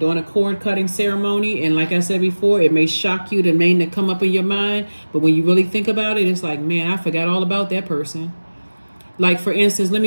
like I said before, it may shock you, the name that come up in your mind, but when you really think about it, it's like, man, I forgot all about that person. Like, for instance, let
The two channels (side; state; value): both; inverted; correlation -1.00